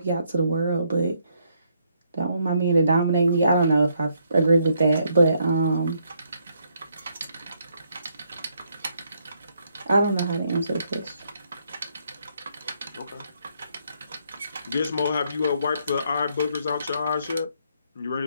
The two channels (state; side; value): inverted; both; correlation -0.73